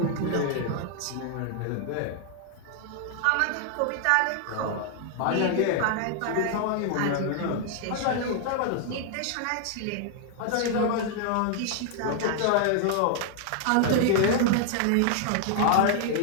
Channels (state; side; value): different; both; correlation 0.00